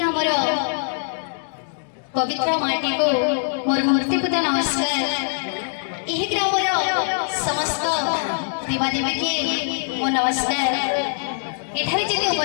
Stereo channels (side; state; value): right; silent; 64 dB below the other